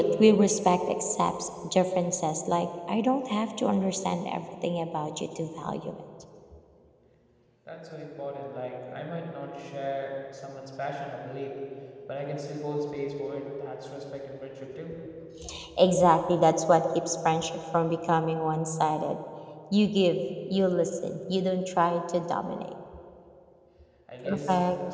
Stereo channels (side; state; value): both; identical; correlation 1.00